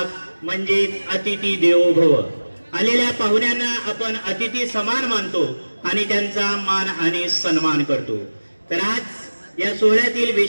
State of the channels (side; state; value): both; inverted; correlation -1.00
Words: म्हणजे अतिथी देवो भव। आलेल्या पाहुण्यांना आपण अतिथी समान मानतो आणि त्यांचा मान आणि सन्मान करतो। तर आज या सोहळ्यातील